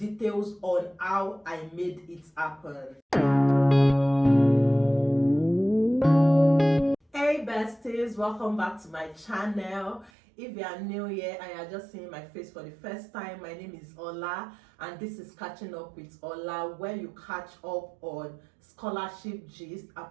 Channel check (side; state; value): left; drops out; at 10.1 s